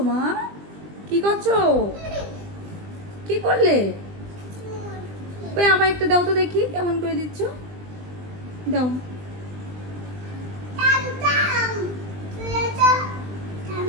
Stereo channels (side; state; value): left; late; 20 ms